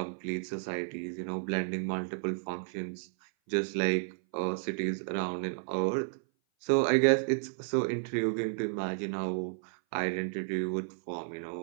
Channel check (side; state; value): left; silent; 56 dB below the other